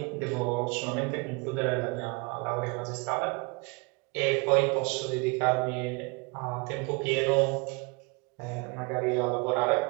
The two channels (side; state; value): left; quieter; 29.0 dB